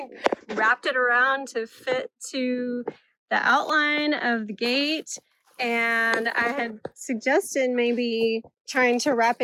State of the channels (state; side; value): identical; both; correlation 1.00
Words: wrapped it around to fit to the outline of the gate. And I had suggested maybe trying to wrap